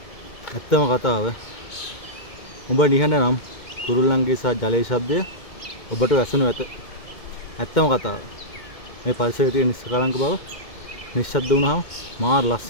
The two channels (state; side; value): late; right; 2.1 ms